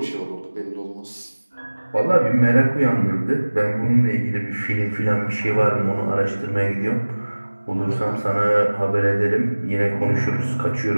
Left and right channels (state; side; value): inverted; both; correlation -1.00